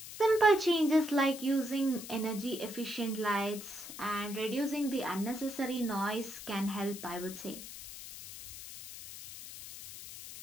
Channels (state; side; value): noise; left; hiss, 12 dB below the sound